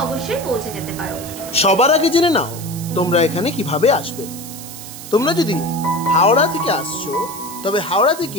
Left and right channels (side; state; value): right; noise; hiss, 13 dB below the sound